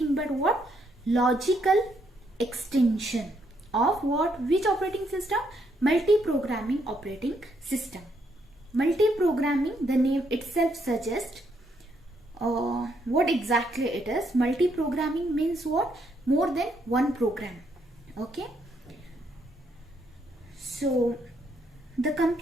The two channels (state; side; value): normal; both; correlation 0.74